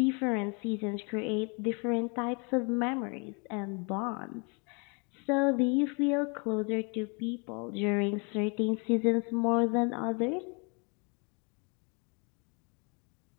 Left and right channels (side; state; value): right; quieter; 33.9 dB